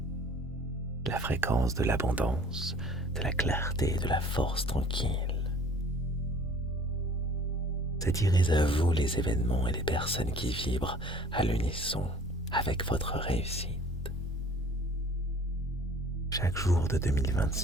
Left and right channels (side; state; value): both; normal; correlation 0.51